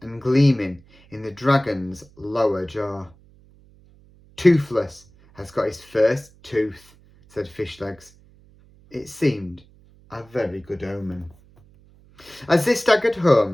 gleaming in the dragon's lower jaw. "Toothless has got his first tooth," said Fishlegs. It seemed a very good omen. As they staggered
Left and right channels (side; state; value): right; noise; hum, 27 dB below the sound